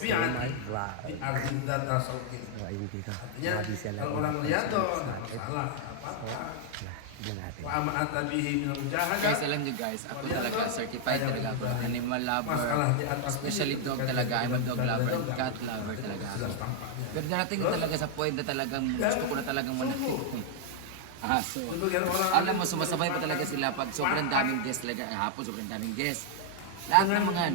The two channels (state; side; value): different; both; correlation 0.00